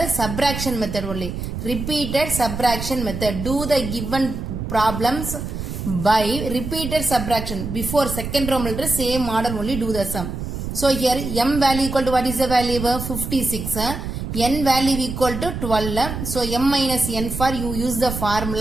Subtraction method only. Repeated subtraction method. Do the given problems by repeated subtraction. Before second Roman letter same model only do the sum. So here m value equal to what is the value? 56. N value equal to 12. So m minus n for you use the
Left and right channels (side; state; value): right; noise; rumble, 6 dB below the sound